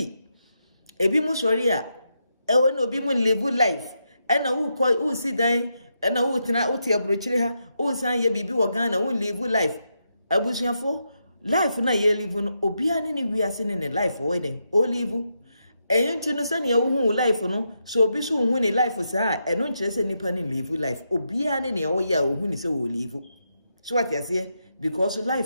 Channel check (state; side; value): inverted; both; correlation -0.83